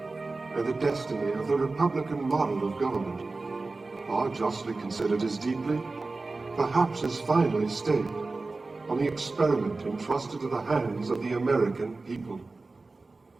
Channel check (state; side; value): quieter; left; 3.6 dB